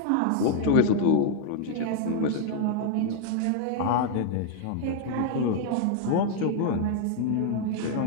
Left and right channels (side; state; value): both; different; correlation 0.00